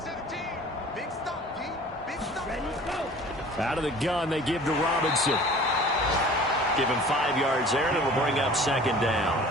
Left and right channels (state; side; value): normal; both; correlation 0.46